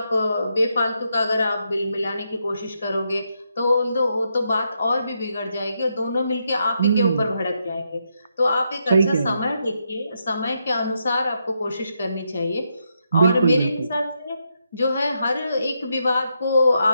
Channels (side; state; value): both; inverted; correlation -0.81